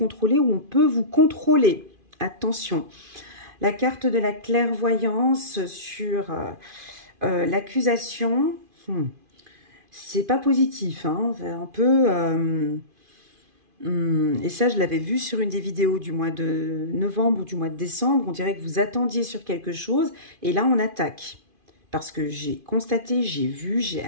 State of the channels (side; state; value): left; late; 2.5 ms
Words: ou on peut vous contrôler. Attention. La carte de la clairvoyance sur l'accusation, c'est pas positif, hein, c'est un peu... et ça, je l'avais vu sur une des vidéos du mois de novembre ou du mois de décembre. On dirait que vous attendiez sur quelque chose et là, on attaque. Parce que j'ai constaté, j'ai vu, j'ai